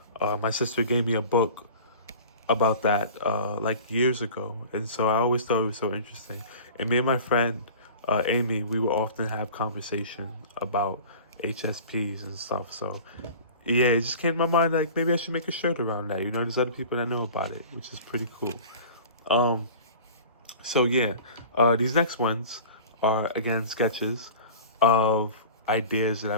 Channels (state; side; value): inverted; both; correlation -0.39